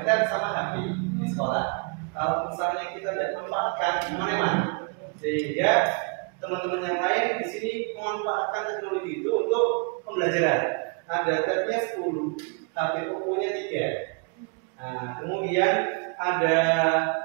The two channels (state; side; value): quieter; left; 35.9 dB